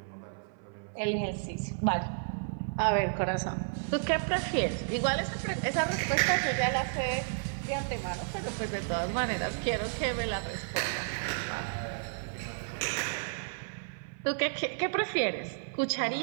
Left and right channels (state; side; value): silent; left; 56 dB below the other